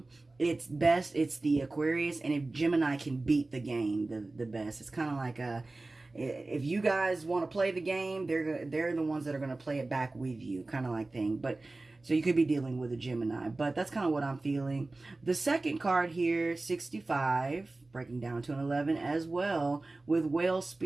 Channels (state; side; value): quieter; left; 3.1 dB